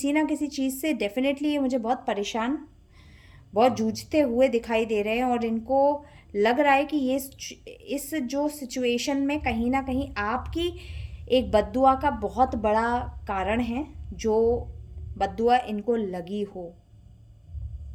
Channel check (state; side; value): identical; both; correlation 1.00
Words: ना किसी चीज़ से डेफिनेटली ये मुझे बहुत परेशान, बहुत जूझते हुए दिखाई दे रहे हैं, और इनको लग रहा है कि ये इस जो सिचुएशन में कहीं ना कहीं आपकी एक बद्दुआ का बहुत बड़ा कारण है, जो बद्दुआ इनको लगी हो।